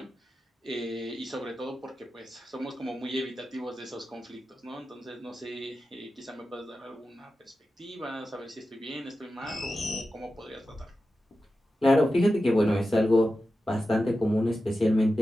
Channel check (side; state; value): both; normal; correlation 0.92